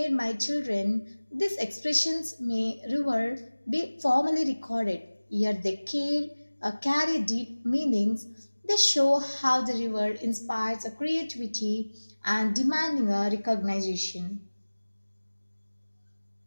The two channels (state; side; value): inverted; both; correlation -1.00